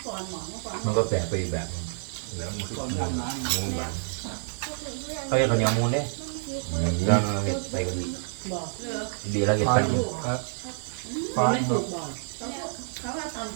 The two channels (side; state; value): left; silent; digital silence